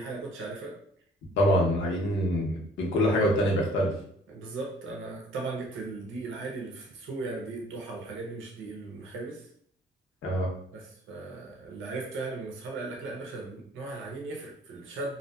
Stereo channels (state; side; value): normal; both; correlation 0.55